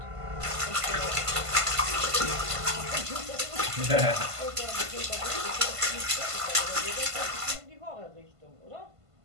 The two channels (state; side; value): late; left; 1.5 ms